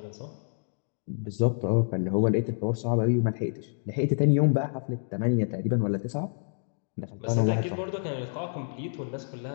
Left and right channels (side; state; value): right; silent; digital silence